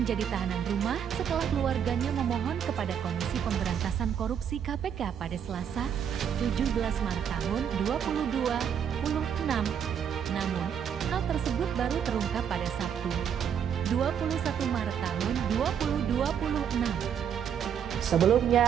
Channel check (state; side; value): quieter; left; 8.3 dB